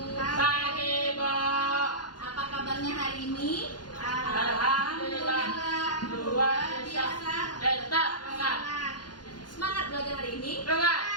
Pagi, Bu. Apa kabarnya hari ini? Alhamdulillah. Luar biasa. Tetap semangat. Semangat belajar hari ini. Semangat.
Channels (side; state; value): right; late; 0.70 ms